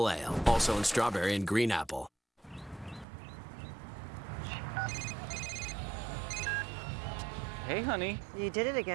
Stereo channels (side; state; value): left; drops out; at 3.1 s